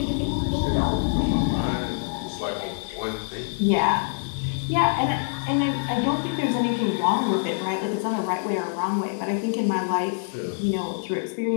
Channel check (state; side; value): silent; right; digital silence